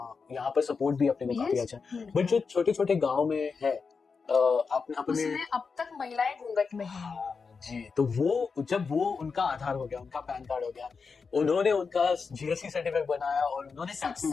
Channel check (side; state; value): right; quieter; 5.1 dB